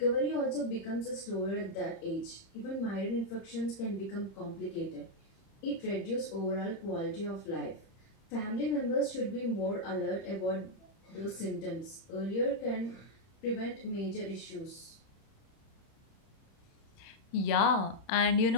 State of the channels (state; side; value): late; right; 31 ms